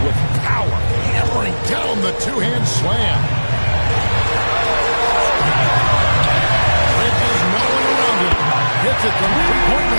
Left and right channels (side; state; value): both; inverted; correlation -1.00